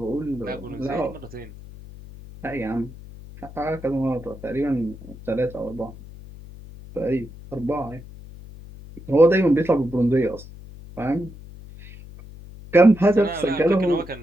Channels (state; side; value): noise; left; hum, 16 dB below the sound